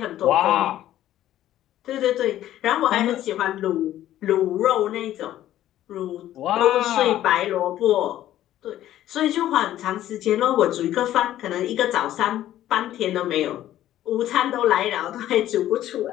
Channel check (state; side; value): quieter; right; 12.9 dB